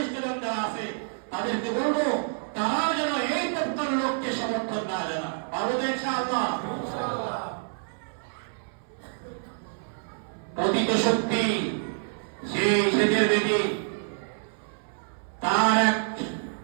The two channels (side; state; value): left; silent; 60 dB below the other